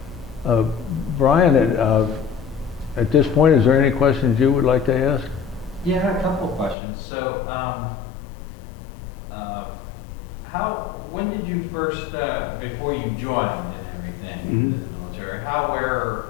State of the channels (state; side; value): drops out; right; at 6.8 s